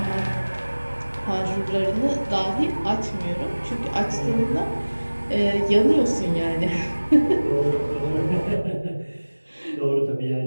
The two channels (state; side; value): inverted; both; correlation -1.00